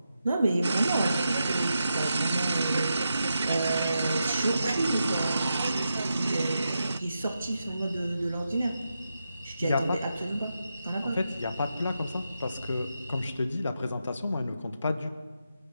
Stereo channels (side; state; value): both; inverted; correlation -0.87